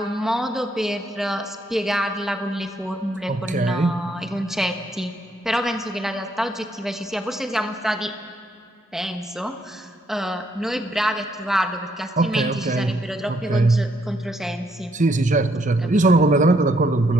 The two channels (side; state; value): both; normal; correlation 0.72